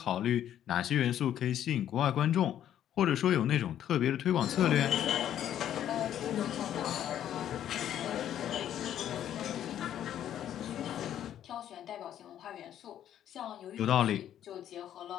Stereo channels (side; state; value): right; quieter; 10.8 dB